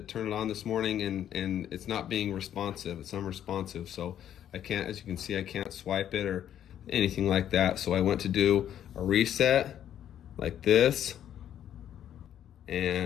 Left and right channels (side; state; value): right; quieter; 10.4 dB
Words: turn it on this morning and it's not being responsive. It's unresponsive. So I can't, as you can see, I can't swipe it or anything like that. So I went to do a reset like this.